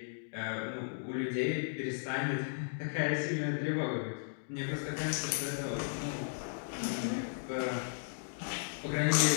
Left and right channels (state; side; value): silent; right; digital silence